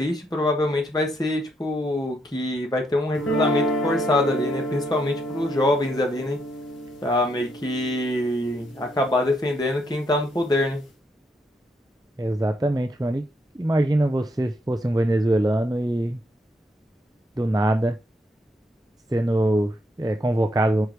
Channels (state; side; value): normal; both; correlation 0.76